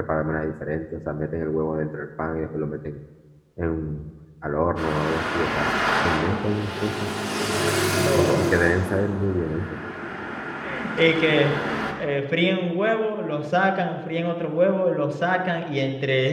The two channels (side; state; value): both; identical; correlation 1.00